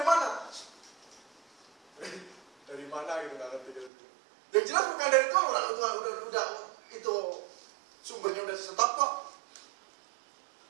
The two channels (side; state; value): left; drops out; at 3.9 s